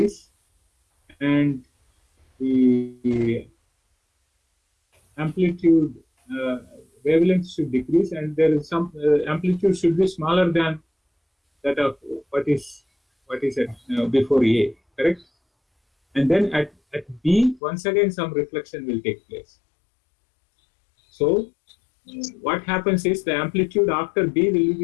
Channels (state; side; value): drops out; right; at 17.6 s